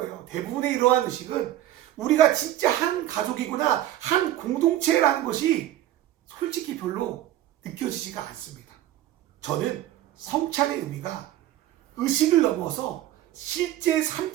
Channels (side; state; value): left; quieter; 13.4 dB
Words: 대부분의 이러한 의식은 우리가 진짜 한 가족이구나, 한 공동체라는 것이 솔직히 별로 느껴지지가 않습니다. 저는 성찬의 의미가 의식을 넘어서 실제 삶